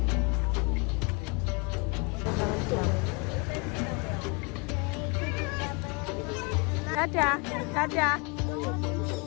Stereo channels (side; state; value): right; quieter; 31.1 dB